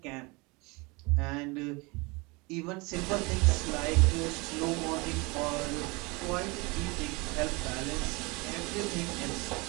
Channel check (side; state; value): left; quieter; 26.6 dB